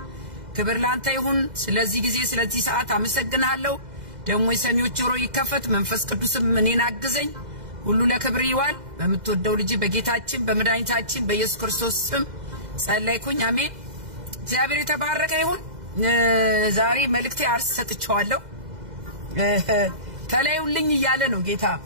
ክብር ላንተ ይሁን ስለዚህ ጊዜ ስለዚህ ሰዓት አመሰግናለሁ ደሞ የሰሚዎች ጆሮ ይከፈት መንፈስ ቅዱስም እኔን አግዘኝ ሁሉ ለክብር ይዋል በመትወደው ልጅ በጌታችን በመድኃኒታችን በኢየሱስ ክርስቶስ ስም ጸለይኩኝ አሜን እግዚአብሔር የተባረከ ይሁን ዛሬ መልእክቴ አርስ ሰጥቻለሁ ተለዩልኝ ይያለ ነው ጌታ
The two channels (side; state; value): left; late; 2.0 ms